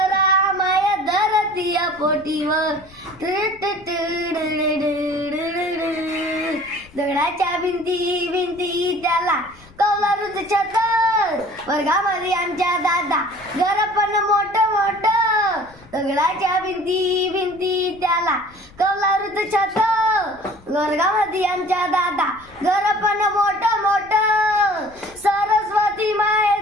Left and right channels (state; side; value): noise; left; rumble, 25 dB below the sound